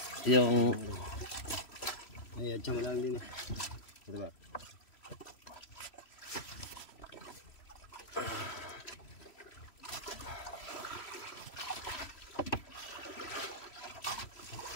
Yung Ay, adya mo lang din eh. Diba?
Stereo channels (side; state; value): right; late; 3.1 ms